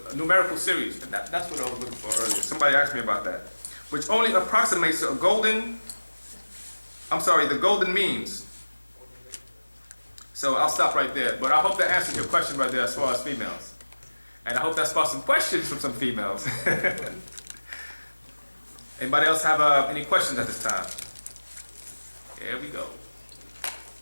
a numerical series. And that's what I was looking for earlier. Somebody asked me about that. Which only approximates the golden means. So I'll stop right there. But I hope that answers your question right there as far as females. And I hope that sparks some questions from some females. Anybody else have any questions at this time? Here we go.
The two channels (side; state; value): both; inverted; correlation -1.00